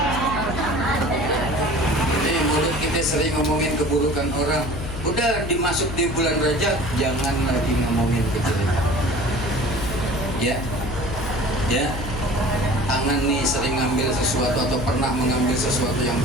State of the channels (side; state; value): left; noise; hum, 7 dB below the sound